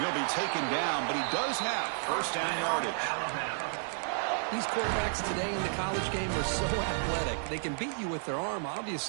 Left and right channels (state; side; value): silent; left; 57 dB below the other